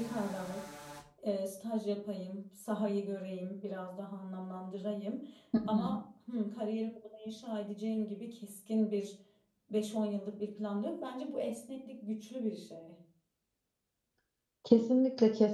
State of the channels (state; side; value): identical; both; correlation 1.00